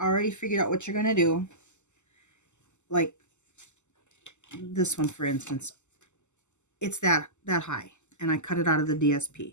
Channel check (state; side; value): late; right; 0.84 ms